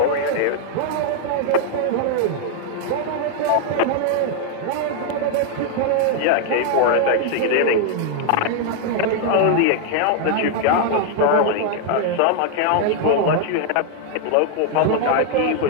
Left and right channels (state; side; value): different; both; correlation 0.00